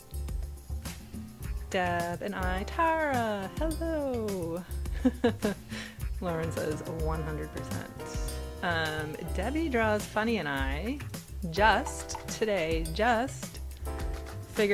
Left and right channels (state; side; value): identical; both; correlation 1.00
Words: Deb and I, Tara, hello. Lauren says 100%. Debbie Draws Funny and I just figured